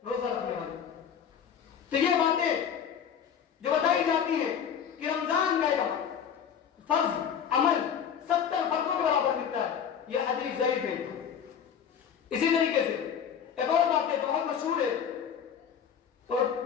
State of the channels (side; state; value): right; quieter; 8.0 dB